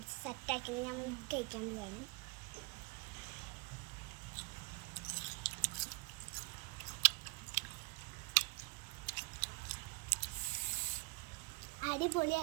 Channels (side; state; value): left; quieter; 28.9 dB